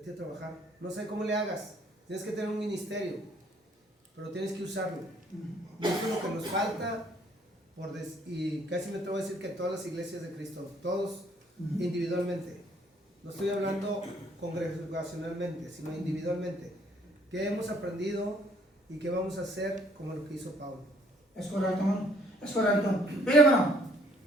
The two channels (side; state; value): both; normal; correlation 0.62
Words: a trabajar. No sé cómo le hagas, tienes que tener un ministerio, pero tienes que usarlo. Y eso es lo que nos falta, y casi me atrevo a decir que todas las iglesias de Cristo, todos individualmente, no estoy hablando congregacionalmente, sino individualmente, ¿qué hemos aprendido y qué vamos a hacer como lo que hizo Pablo? Es correcto, hermano. Es correcto. Mire, hermano,